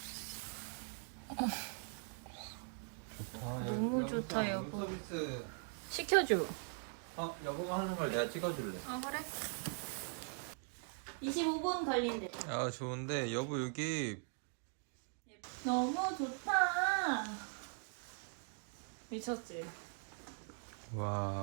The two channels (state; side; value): silent; left; 50 dB below the other